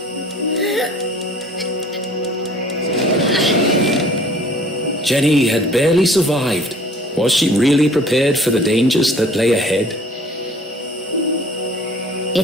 Jenny had barely survived. Was she really prepared for the dangers that lay ahead?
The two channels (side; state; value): both; normal; correlation 0.51